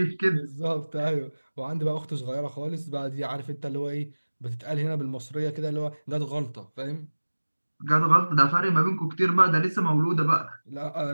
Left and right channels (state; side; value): inverted; both; correlation -1.00